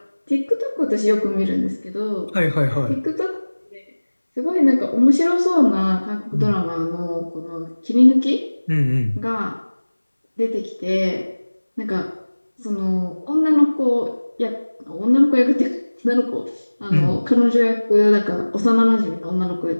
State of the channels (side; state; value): both; inverted; correlation -1.00